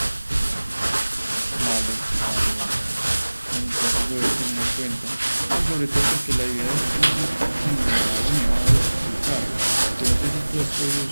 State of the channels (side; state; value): both; inverted; correlation -1.00